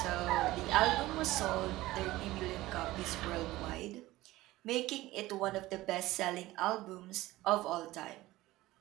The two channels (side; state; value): left; quieter; 17.6 dB